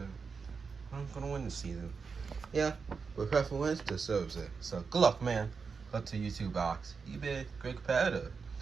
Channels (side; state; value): left; quieter; 5.3 dB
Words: I'm gonna win the season. Yeah, but whoever wins deserves it. So good luck, man. Good to you two, Box. You've been a great competitor.